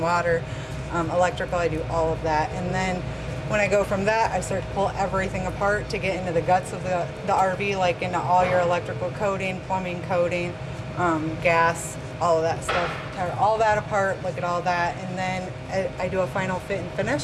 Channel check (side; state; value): both; identical; correlation 1.00